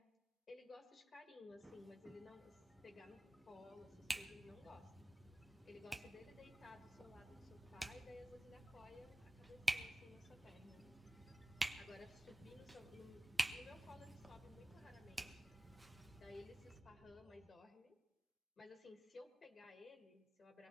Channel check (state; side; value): normal; both; correlation 0.96